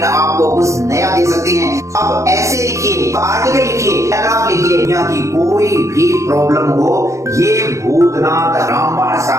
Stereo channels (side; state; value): left; late; 0.15 ms